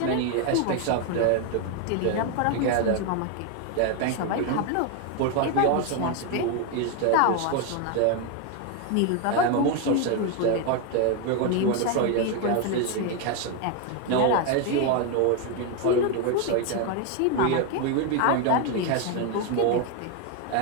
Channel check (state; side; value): different; both; correlation 0.01